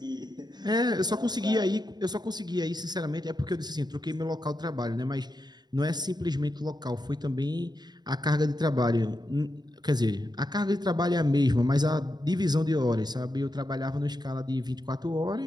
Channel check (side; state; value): left; late; 0.20 ms